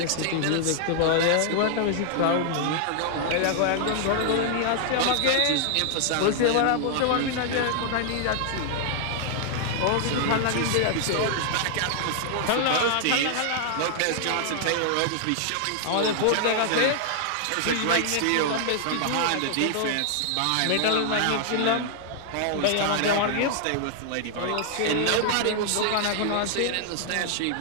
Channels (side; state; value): both; different; correlation 0.00